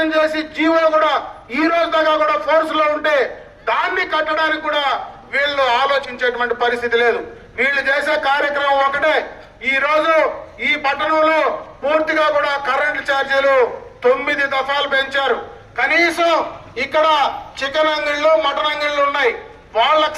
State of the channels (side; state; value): both; identical; correlation 1.00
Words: చేసి జీవో కూడా ఈ రోజు దాకా కూడా ఫోర్స్ లో ఉంటే దాన్ని కట్టడానికి కూడా వీళ్ళు ఆలోచించేటువంటి పరిస్థితి లేదు. వీళ్ళు చేసే కార్యక్రమం ఒకటే. ఈ రోజు ఈ పట్టణంలో పూర్తిగా కూడా కరెంటు ఛార్జీలు 9 దఫాలు పెంచారు. కనీసం ఇక్కడ చికెన్ అంగిళ్ళు, మటన్ అంగిళ్ళు ఉన్నాయి, వాళ్ళకు